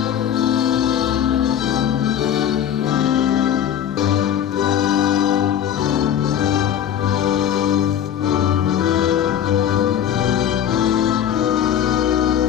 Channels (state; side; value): quieter; right; 9.7 dB